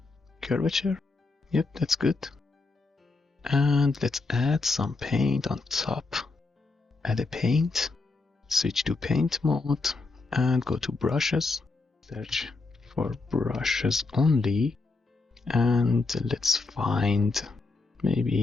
curvature. Yep, that's good. And let's add some paint on top. Add a paint, switch to paint mode, and go to brushes. Search for brushes only, and let's find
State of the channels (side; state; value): right; quieter; 3.7 dB